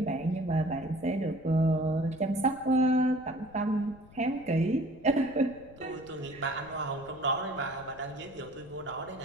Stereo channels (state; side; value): noise; left; rumble, 22 dB below the sound